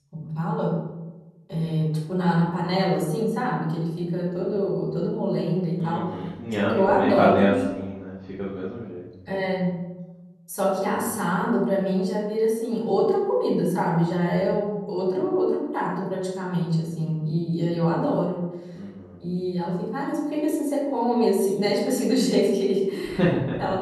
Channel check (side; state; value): both; identical; correlation 1.00